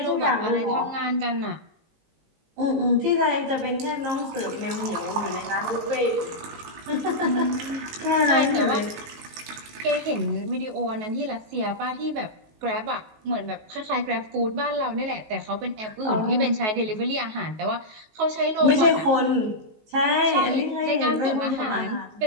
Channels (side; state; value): left; late; 19 ms